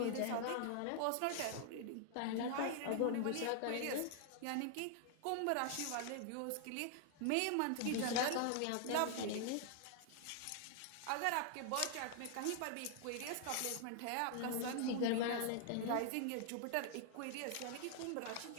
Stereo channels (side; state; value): both; different; correlation 0.00